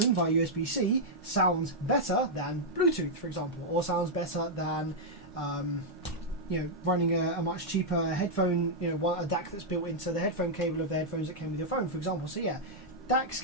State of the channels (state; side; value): normal; both; correlation -0.05